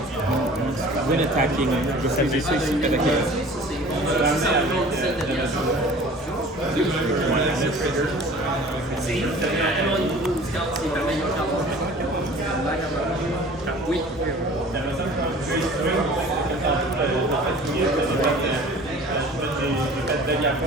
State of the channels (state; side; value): normal; both; correlation 0.45